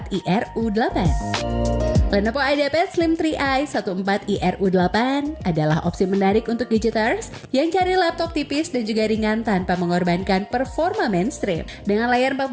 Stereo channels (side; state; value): both; identical; correlation 1.00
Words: Lenovo IdeaPad Slim 3i 14IRU8 adalah opsi menarik untuk gadgeters yang cari laptop tipis dan juga ringan tanpa mengorbankan performa mainstream. Dengan layar